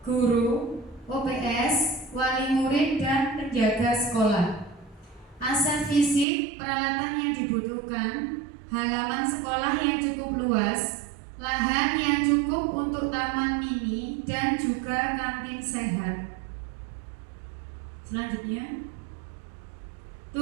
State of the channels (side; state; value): left; drops out; at 6.2 s